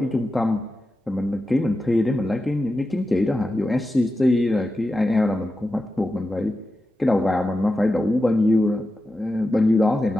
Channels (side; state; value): both; normal; correlation 0.91